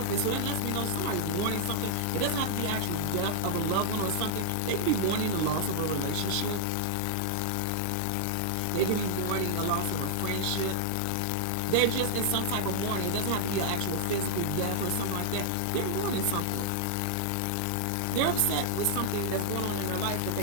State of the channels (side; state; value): both; different; correlation 0.00